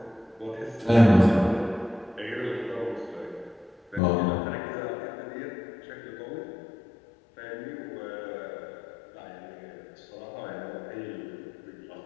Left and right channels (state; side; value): drops out; right; at 4.0 s